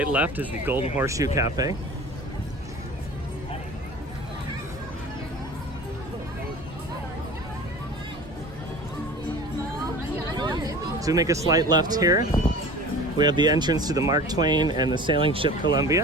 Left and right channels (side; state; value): both; normal; correlation 0.40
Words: left is the Golden Horseshoe Cafe. So we make a slight left here. We have the entrance to the Mark Twain and the sailing ship